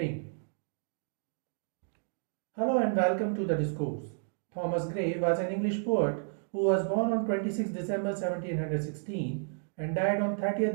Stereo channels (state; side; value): silent; left; digital silence